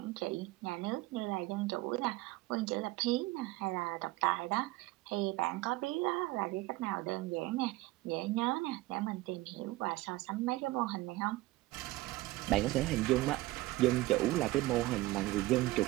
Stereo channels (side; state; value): left; quieter; 18.9 dB